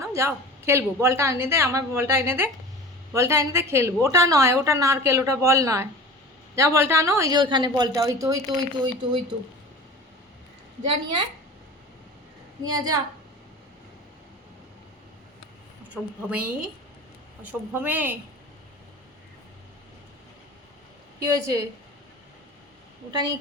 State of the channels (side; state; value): both; normal; correlation 0.37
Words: যাও খেলবো, বলটা এনে দে, আমার বলটা এনে দে, বলটা এনে দে খেলবো। ওটা নয়, ওটা নারকেল, ওটা বল নয়, যা বলটা আনো, ওই যে ওইখানে বলটা, ওই তো ওই তো ওই তো ওই তো ওই তো, যা নিয়ে আয়, নিয়ে যা। অসভ্য মেয়ে, অসভ্য মেয়ে। কি হয়েছে, ওটা নিয়ে